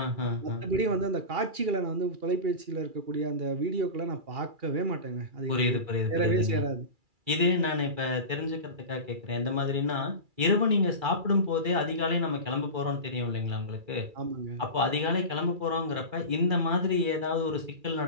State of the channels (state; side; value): late; left; 2.3 ms